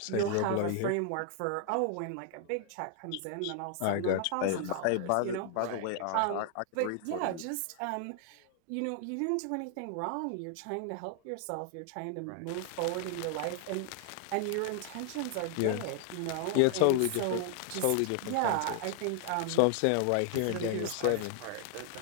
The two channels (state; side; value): different; both; correlation 0.00